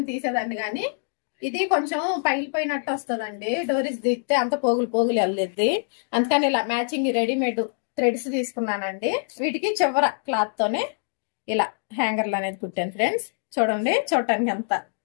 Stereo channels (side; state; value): right; silent; digital silence